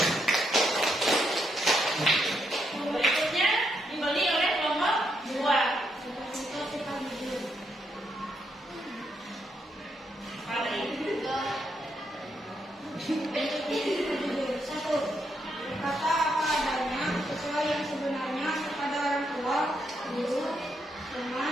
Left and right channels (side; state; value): both; normal; correlation 0.78